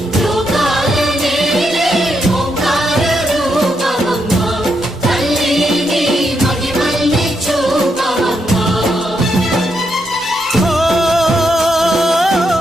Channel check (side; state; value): both; normal; correlation 0.80